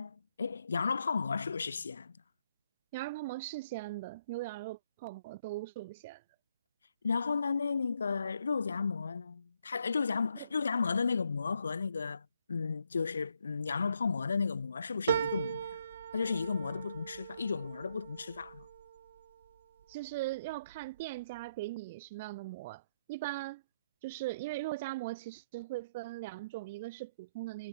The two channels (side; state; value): both; inverted; correlation -0.76